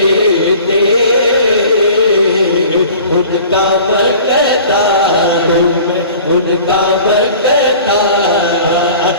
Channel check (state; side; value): inverted; both; correlation -0.45